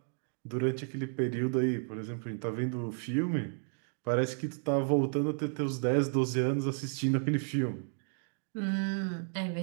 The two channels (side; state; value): left; silent; 56 dB below the other